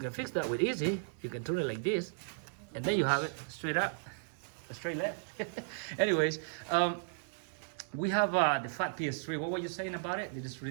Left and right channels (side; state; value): left; silent; 54 dB below the other